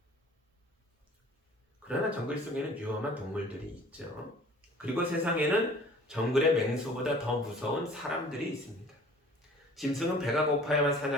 그러나 정글 속에는 위험한 동물들이 있죠. 그리고 세상에는 정글의 맹수보다 더 무서운 사람들이 있습니다. 짐승은 배가 고파야만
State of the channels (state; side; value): normal; both; correlation 0.49